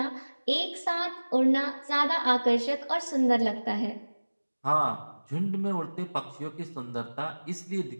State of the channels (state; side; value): inverted; both; correlation -1.00